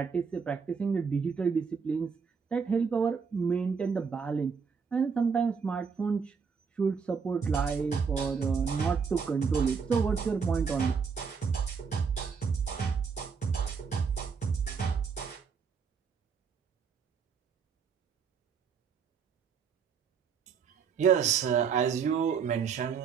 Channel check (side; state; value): left; quieter; 6.0 dB